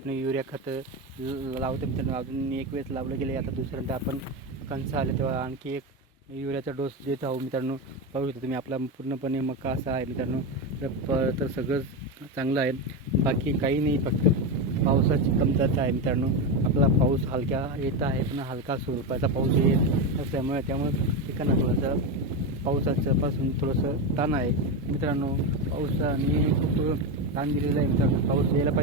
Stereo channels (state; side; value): normal; both; correlation 0.14